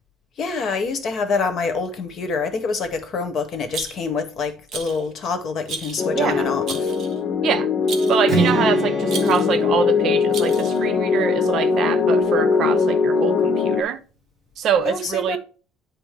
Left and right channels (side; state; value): both; normal; correlation 0.62